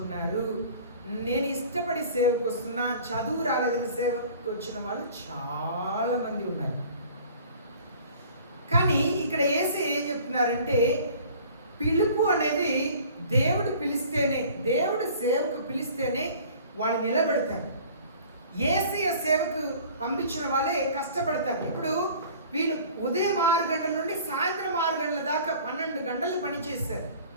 నేను ఇష్టపడి సేవకు వస్తున్నా, చదువు రాలేదని సేవకు వచ్చిన వాళ్ళు చాలామంది ఉన్నారు. కానీ ఇక్కడ యేసయ్య ఏం చెప్తున్నారంటే, పిలుపు అనేది దేవుడు పిలిస్తేనే, దేవుడు సేవకు పిలిస్తేనే వాళ్ళు నిలబెడతారు. యేసయ్య సేవకు పంపించిన వాళ్ళే కష్టపడతారు. ఇప్పుడు వీళ్ళు ఉదయం 6 గంటల నుండి సాయంత్రం 6 గంటల దాకా 12 గంటలు పనిచేశారు.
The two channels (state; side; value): inverted; both; correlation -0.48